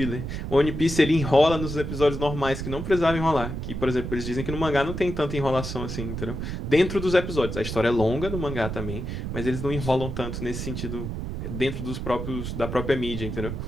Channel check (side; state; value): right; noise; rumble, 5 dB below the sound